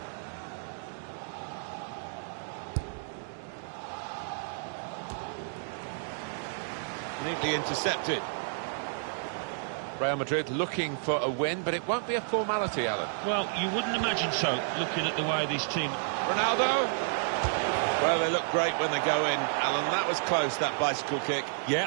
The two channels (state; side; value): silent; left; 57 dB below the other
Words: Neatly intercepted. Real Madrid looking for a win, but it won't be a formality, Alan. Well, you wouldn't imagine so, looking at the way this team... Ronaldo! Well, they look great when they go in, Alan. That was close, that bicycle kick.